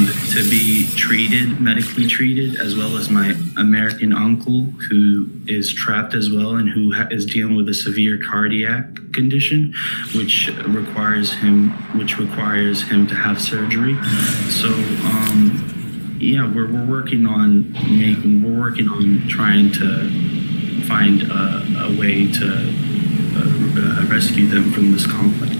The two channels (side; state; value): both; inverted; correlation -1.00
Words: to be medically treated, as well as my American uncle who is trapped as well and who is dealing with a severe cardiac condition, which requires him to have surgery. So we're working on trying to find a way to rescue them from this conflict.